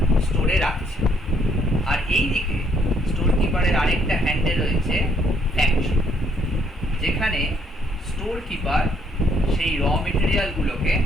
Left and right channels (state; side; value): normal; both; correlation 0.68